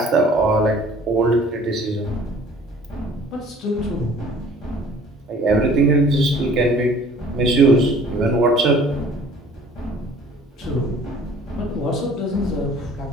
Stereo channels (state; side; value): normal; both; correlation 0.52